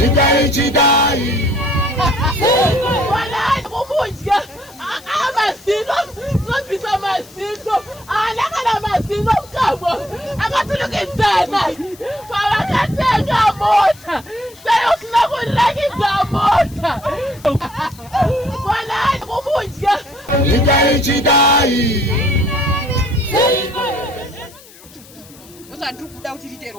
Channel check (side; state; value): left; noise; hiss, 22 dB below the sound